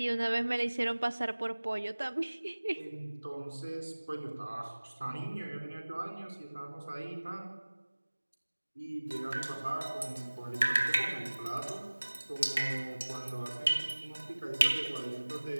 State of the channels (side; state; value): both; inverted; correlation -1.00